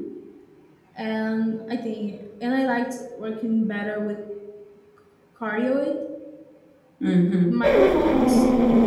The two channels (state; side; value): identical; both; correlation 1.00